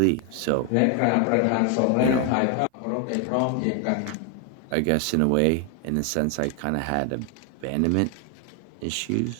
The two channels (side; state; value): both; different; correlation 0.00